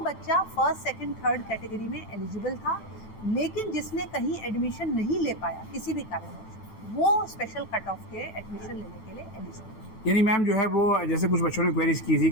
फर्स्ट, सेकंड, थर्ड कैटेगरी में एलिजिबल था, लेकिन जिसने कहीं एडमिशन नहीं ले पाया किसी भी कारणवश, वो स्पेशल कट ऑफ के एडमिशन लेने के लिए एलिजिबल है। यानी मैम जो है वो, जैसे कुछ बच्चों ने क्वेरीज की थी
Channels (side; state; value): right; late; 9.1 ms